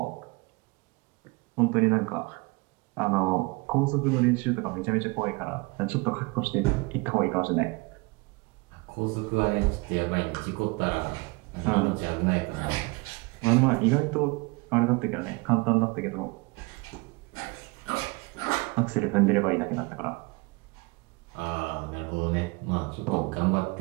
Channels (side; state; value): left; quieter; 26.6 dB